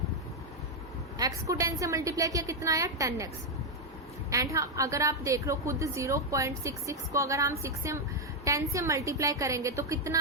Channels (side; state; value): both; normal; correlation 0.01